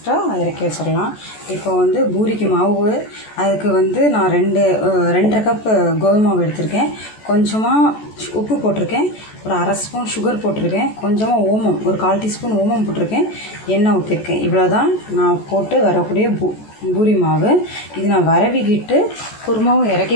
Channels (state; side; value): late; right; 14 ms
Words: இறக்கி வச்சிடலாம். இப்போ வந்து பூரிக்கு மாவு, அதுக்கு வந்து நான் 2.5 கப் கோதுமை மாவு எடுத்திருக்கேன். கொஞ்சமாக உப்பு போட்டிருக்கேன், ஒரு ½ ஸ்பூன் சுகர் போட்டிருக்கேன், கொஞ்சமாக ஓமம், ஒரு 1/4 டீஸ்பூன் ஓமம் போட்டிருக்கேன், எண்ணெய் ஊற்றிருக்கேன். இவ்வளோ தான் நான் போட்டு வரக்கூடிய பூரி மாவு. இது நான் வரவிக்கிட்டு குருமாவும்